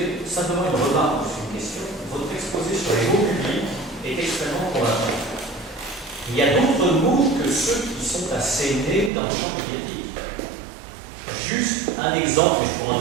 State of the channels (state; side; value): drops out; left; at 9.1 s